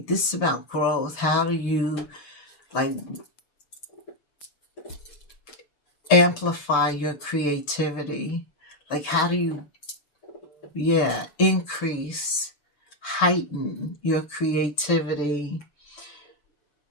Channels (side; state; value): right; late; 6.8 ms